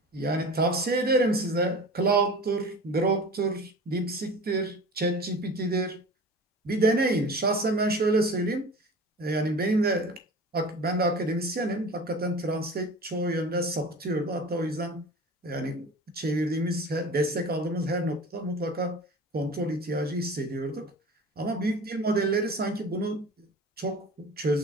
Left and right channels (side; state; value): both; normal; correlation 0.38